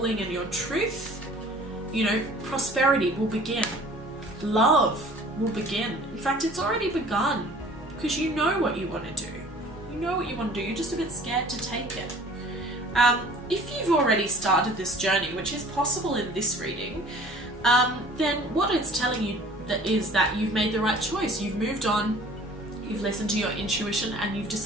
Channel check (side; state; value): both; normal; correlation 0.49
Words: and your truth, you know, prosperity will begin. Love will begin. In fact, it's already begun, because you know what you want to do. You know what you want to do. You're just a bit scared to take it. If you've already started this journey, which is possible in this reading, then what it's telling you is that you've made the right choice. You've moved on. You've listened to your intuition, and you've